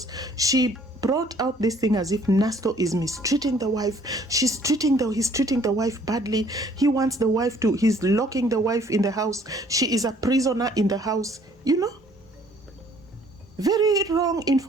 she brought out this thing as if Nasto is mistreating the wife. He's treating the wife badly. He wants the wife to, he's locking the wife in the house. She is a prisoner in the house. You know, very wrong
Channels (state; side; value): normal; both; correlation 0.59